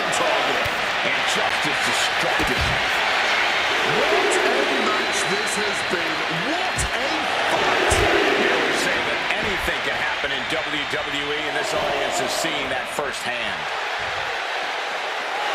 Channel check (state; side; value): identical; both; correlation 1.00